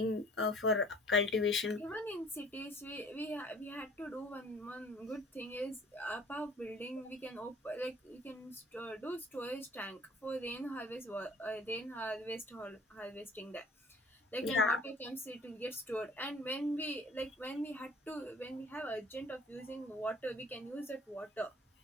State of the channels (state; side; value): normal; both; correlation 0.52